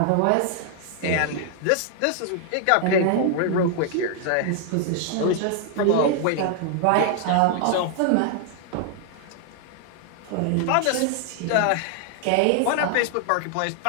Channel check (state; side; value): different; both; correlation 0.00